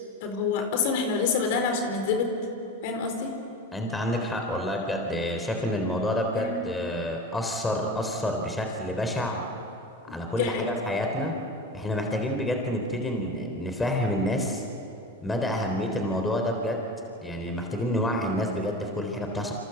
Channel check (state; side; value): normal; both; correlation 0.30